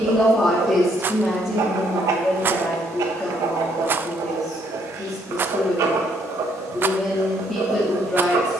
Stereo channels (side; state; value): both; normal; correlation 0.69